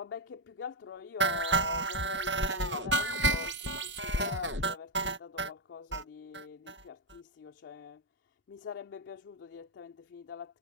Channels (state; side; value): normal; both; correlation 0.04